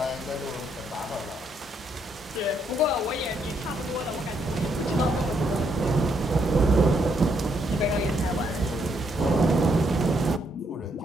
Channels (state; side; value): normal; both; correlation 0.74